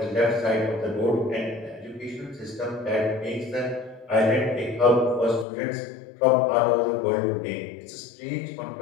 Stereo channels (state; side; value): drops out; right; at 5.5 s